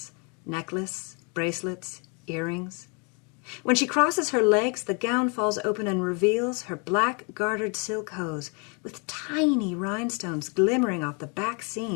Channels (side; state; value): right; quieter; 33.6 dB